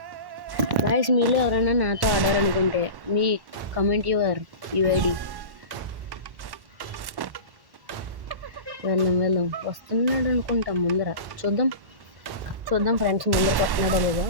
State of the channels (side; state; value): left; late; 1.1 ms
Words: గాయ్స్, మీలో ఎవరైనా నాతో ఆడాలనుకుంటే మీ కమెంట్ యువర్ యూఐడి. వెళ్దాం వస్తున్నాడు అనుకుంటాం. ముందర చూద్దాం ఫ్రెండ్స్, ముందరకు వస్తున్నాడో లేదో.